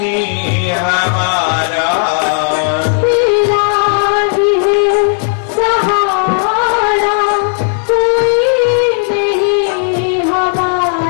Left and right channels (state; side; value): silent; right; 55 dB below the other